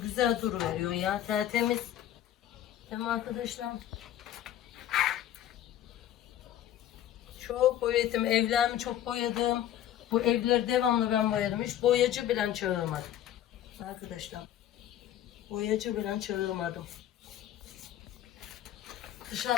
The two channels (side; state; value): right; quieter; 11.6 dB